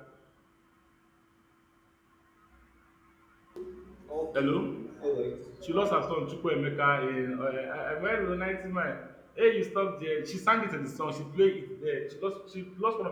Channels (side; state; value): both; identical; correlation 1.00